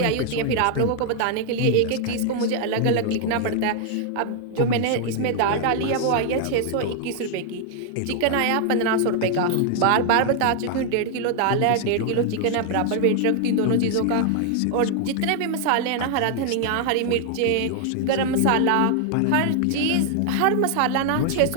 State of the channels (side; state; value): both; different; correlation 0.00